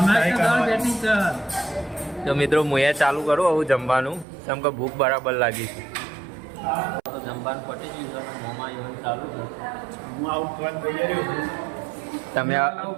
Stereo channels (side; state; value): left; drops out; at 4.2 s